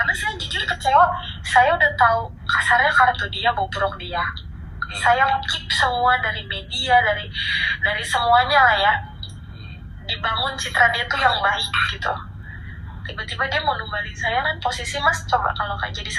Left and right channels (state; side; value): identical; both; correlation 1.00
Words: saya jujur kecewa. Saya udah tahu kasarnya kartu dia, bobrok dia. Saya keep semua dari media, dari semuanya lah ya. Dibangun citra dia tuh yang baik gitu. Tiba-tiba dia mau numbalin saya kan, posisi Mas coba kalau kayak jadi